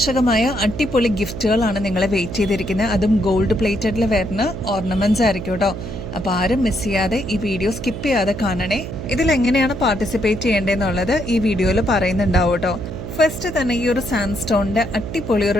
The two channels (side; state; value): right; noise; hum, 8 dB below the sound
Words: അടിപൊളി ഗിഫ്റ്റുകളാണ് നിങ്ങളെ വെയിറ്റ് ചെയ്തിരിക്കുന്നത്. അതും ഗോൾഡ് പ്ലേറ്റഡിൽ വരുന്ന ഓർണമെന്റ്സ് ആയിരിക്കും കേട്ടോ. അപ്പോൾ ആരും മിസ് ചെയ്യാതെ ഈ വീഡിയോ സ്കിപ്പ് ചെയ്യാതെ കാണണേ. ഇതിലെങ്ങനെയാണ് പാർട്ടിസിപ്പേറ്റ് ചെയ്യേണ്ടതെന്നുള്ളത് ഈ വീഡിയോയിൽ പറയുന്നുണ്ടാവും കേട്ടോ. ഫസ്റ്റ് തന്നെ ഈ ഒരു സാൻഡ്സ്റ്റോണിന്റെ അടിപൊളി